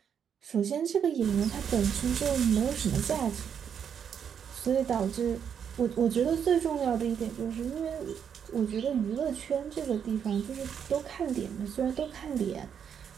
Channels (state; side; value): quieter; left; 7.9 dB